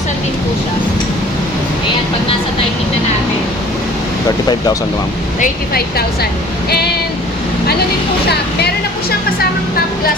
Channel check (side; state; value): both; normal; correlation 0.50